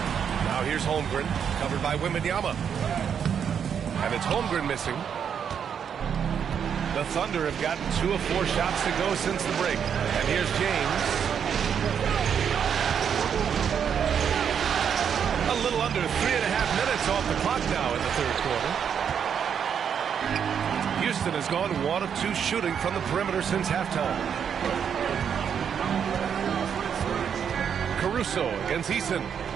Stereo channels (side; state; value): left; quieter; 7.8 dB